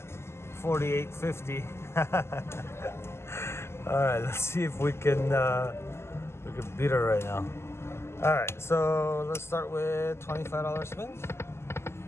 48.50. All right, let's see if we can beat her right now. All right, so let's start with $25 spins.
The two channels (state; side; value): late; right; 0.12 ms